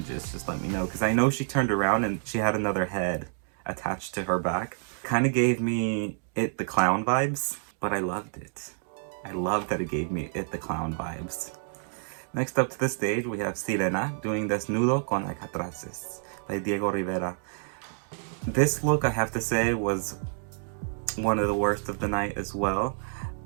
just let me know, because I know she turned around and she had another head attached to her back. Kind of gave me It the Clown vibes, but I loved it. I love that it gave me It the Clown vibes. Next up to the stage, we have Sirena doing Desnudo con Alcatraces by Diego Rivera. This look, I have to say, was one of the worst of the night as well.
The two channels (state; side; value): silent; left; digital silence